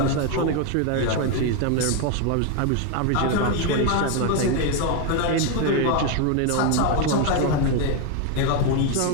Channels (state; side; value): different; both; correlation 0.01